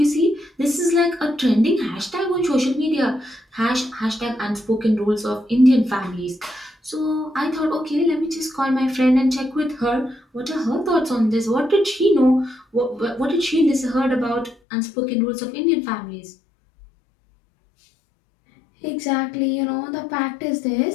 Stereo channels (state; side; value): drops out; right; at 14.6 s